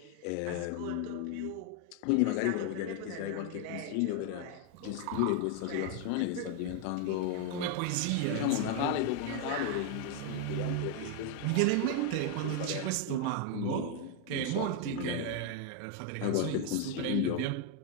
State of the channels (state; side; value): different; both; correlation 0.01